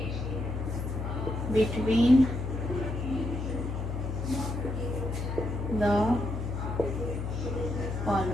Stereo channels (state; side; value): noise; left; hum, 4 dB below the sound